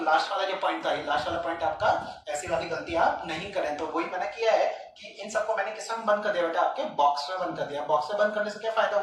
लास्ट वाला जो पॉइंट था, ये लास्ट वाला पॉइंट आपका, ऐसी वाली गलती आप नहीं करें। तो वही मैंने किया है कि इन सबको मैंने किस में बंद कर दिया बेटा, आपके बॉक्स में बंद कर दिया। बॉक्स में बंद करने से क्या फायदा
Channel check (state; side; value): identical; both; correlation 1.00